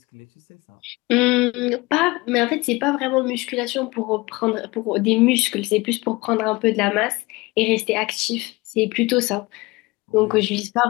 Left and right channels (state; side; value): quieter; right; 22.7 dB